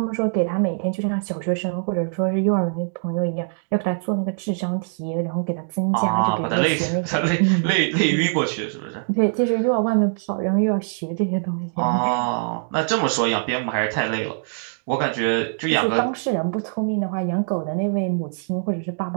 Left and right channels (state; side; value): silent; left; digital silence